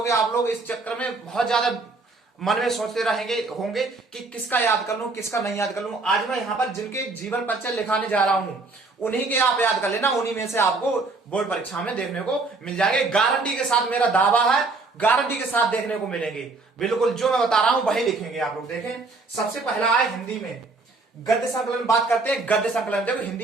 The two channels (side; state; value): left; quieter; 3.6 dB